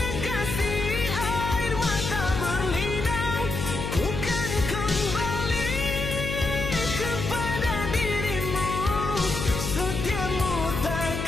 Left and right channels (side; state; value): left; noise; hum, 4 dB below the sound